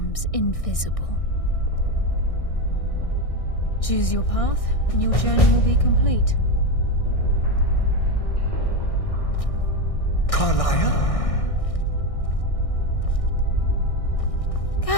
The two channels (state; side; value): late; right; 1.6 ms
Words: invisible. Choose your path, and your journey will be complete. Carlia?